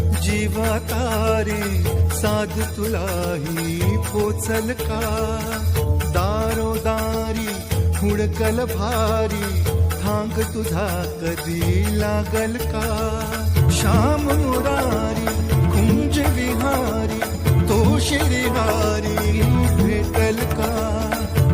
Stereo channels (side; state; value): both; identical; correlation 1.00